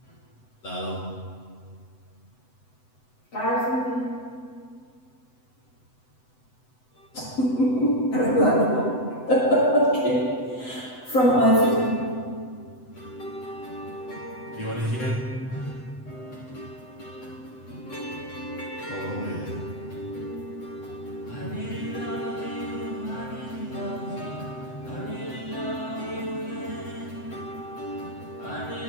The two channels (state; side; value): late; right; 7.9 ms